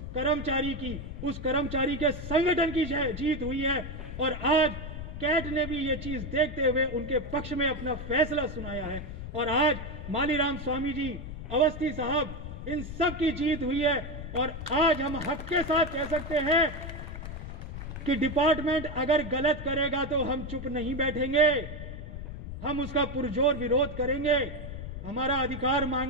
कर्मचारी के संगठन की जीत हुई है। और आज कैट ने भी ये चीज देखते हुए उनके पक्ष में अपना फैसला सुनाया है और आज मालीराम स्वामी जी, अवस्थी साहब, इन सब की जीत हुई है। और आज हम हक के साथ कह सकते हैं कि डिपार्टमेंट अगर गलत करेगा तो हम चुप नहीं बैठेंगे, हम उसका पुरजोर विरोध करेंगे, हमारा अधिकार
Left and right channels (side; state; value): left; noise; rumble, 8 dB below the sound